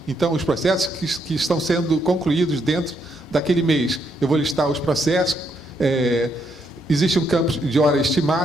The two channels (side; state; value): both; normal; correlation 0.76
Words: Então, os processos que estão sendo concluídos dentro daquele mês. Eu vou listar os processos. Existe um campo de horas